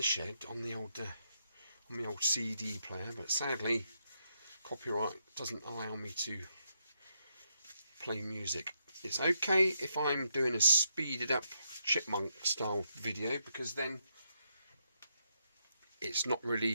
shed on the old CD player, but sadly, copyright doesn't allow me to play music. It's okay if I'm doing a speeded up chipmunk style video, because then it's not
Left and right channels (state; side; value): inverted; both; correlation -0.80